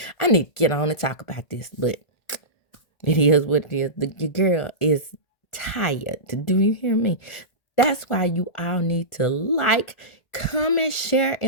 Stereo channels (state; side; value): late; right; 1.5 ms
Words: I need to get on and talk about this. But it is what it is. Your girl is tired. Do you hear me? That's why you all need to like, comment, share,